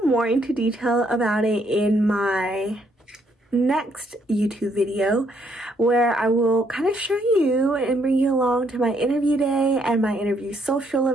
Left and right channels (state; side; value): normal; both; correlation 0.71